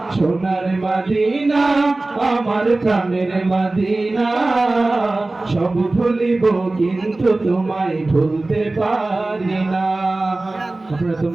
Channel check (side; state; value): left; quieter; 3.0 dB